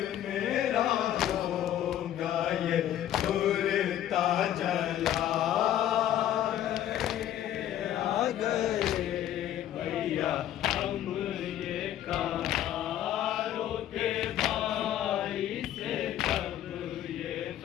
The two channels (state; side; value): quieter; right; 11.7 dB